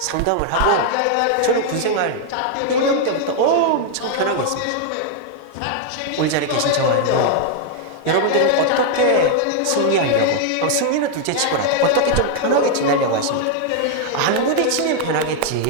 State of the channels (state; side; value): different; both; correlation 0.00